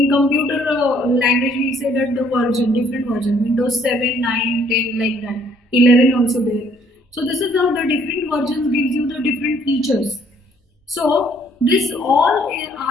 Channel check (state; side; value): normal; both; correlation 0.63